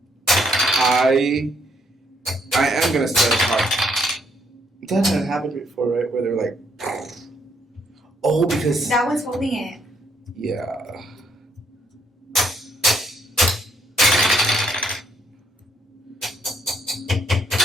I am gonna start a podcast. That had happened before, right? Where they're like, oh, because that one's holding it. Yeah.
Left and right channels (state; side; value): normal; both; correlation 0.71